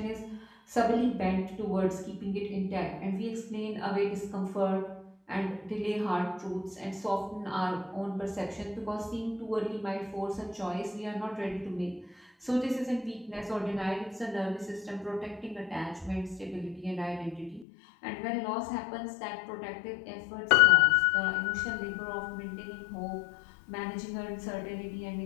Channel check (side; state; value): right; drops out; at 17.7 s